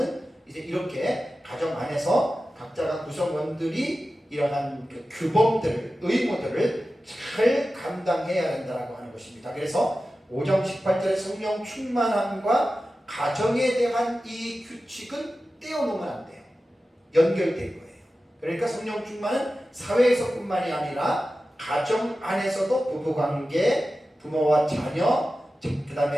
이제 이렇게 가정 안에서 각자가 구성원들이 이러한 그 규범들을, 의무들을 잘 감당해야 된다고 하는 것입니다. 그래서 5장 18절의 성령 충만함과 가정에 대한 이 규칙은 떼어놓으면 안 돼요. 연결된 거예요. 그러니까 성령 충만은 사회에서뿐만이 아니라 가정 안에서도 부부관계, 부모와 자녀, 그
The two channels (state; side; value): normal; both; correlation 0.94